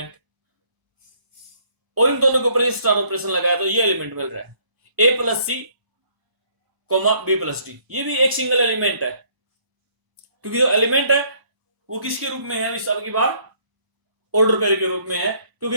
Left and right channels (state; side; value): late; left; 1.0 ms